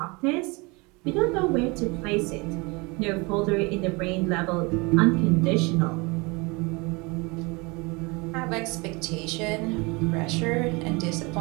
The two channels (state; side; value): quieter; left; 27.2 dB